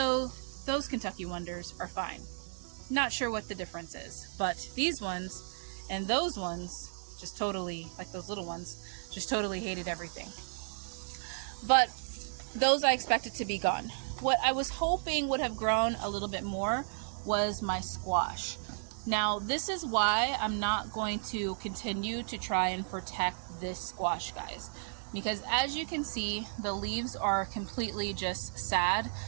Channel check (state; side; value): silent; left; digital silence